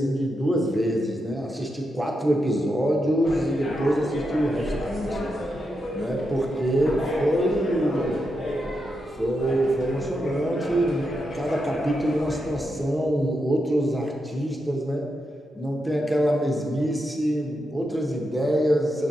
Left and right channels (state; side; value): normal; both; correlation 0.85